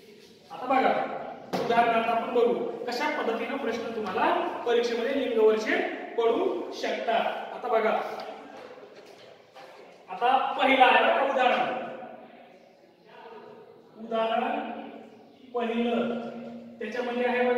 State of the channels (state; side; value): identical; both; correlation 1.00